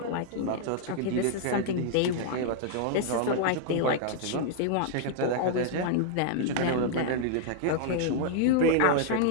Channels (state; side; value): different; both; correlation -0.01